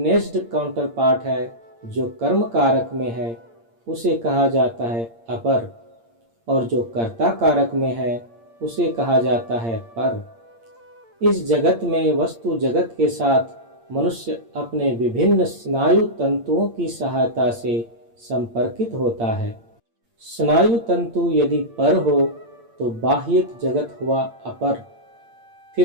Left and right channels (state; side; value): late; left; 8.7 ms